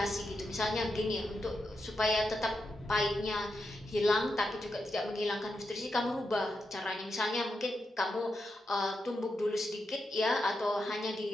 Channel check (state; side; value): normal; both; correlation 0.86